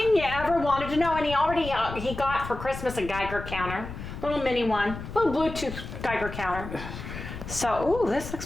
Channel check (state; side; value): noise; left; rumble, 9 dB below the sound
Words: you ever wanted to know. And he got for Christmas a Geiger counter. Little mini one. Little Bluetooth Geiger counter. So, ooh, this looks